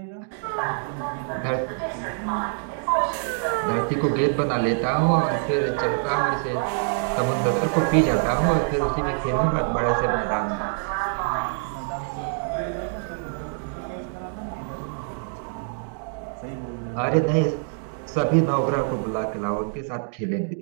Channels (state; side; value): silent; left; 62 dB below the other